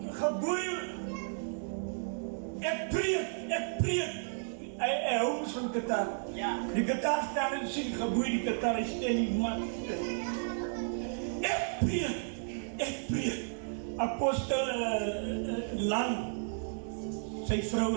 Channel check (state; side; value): silent; left; digital silence